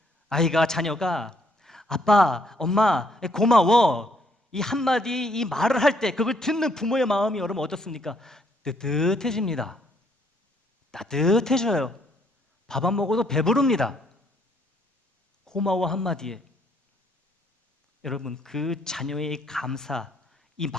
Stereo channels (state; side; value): normal; both; correlation 0.68